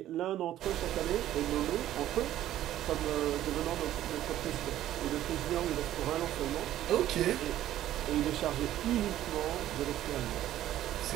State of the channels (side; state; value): left; quieter; 13.0 dB